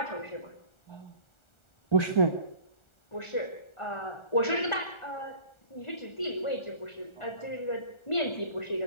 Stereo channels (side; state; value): right; late; 1.3 ms